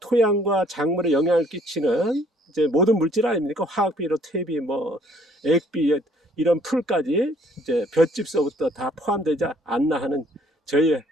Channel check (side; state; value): both; normal; correlation 0.61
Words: 토양과 작물에 영향을 끼치는 이제 모든 물질 아닙니까? 화학비료, 퇴비, 뭐 액비 이런 풀까지 이제 볏짚서부터 다 포함되지 않나 하는